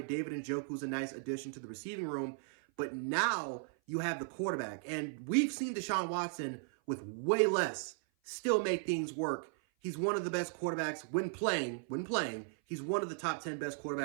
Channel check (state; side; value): silent; left; 54 dB below the other